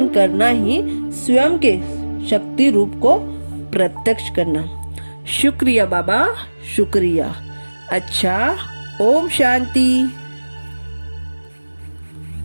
करना ही स्वयं के शक्ति रूप को प्रत्यक्ष करना। शुक्रिया बाबा, शुक्रिया। अच्छा, ओम शांति।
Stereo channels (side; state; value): both; inverted; correlation -1.00